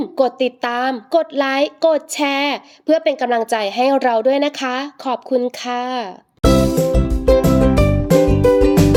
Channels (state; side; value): identical; both; correlation 1.00